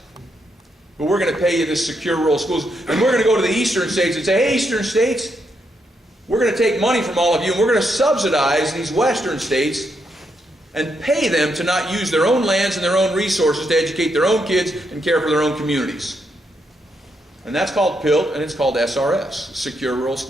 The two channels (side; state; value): both; normal; correlation 0.79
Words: But we're going to pay you this secure rural schools. And we're going to go to the eastern states and say, hey, eastern states, we're going to take money from all of you, and we're going to subsidize these western states and pay them to not use their own lands and their own resources to educate their own kids and care for their own communities. And that's called PILT, and it's called SRS, Secure Rural